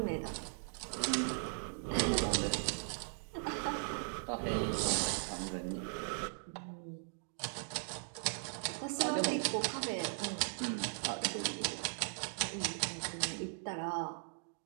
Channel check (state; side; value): silent; left; digital silence